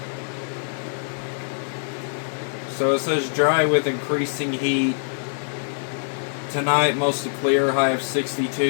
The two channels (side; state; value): right; silent; digital silence